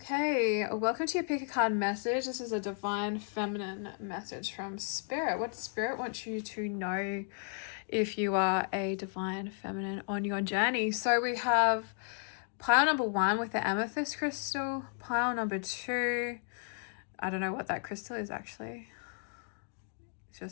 welcome to your pick a card message. This is a divine feminine message from Spirit. What Spirit wants you to know if you are a divine feminine on your journey. So we have pile number 1 with the amethyst crystal, pile number 2. I don't know what that crystal is actually. It's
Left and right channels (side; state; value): right; silent; 55 dB below the other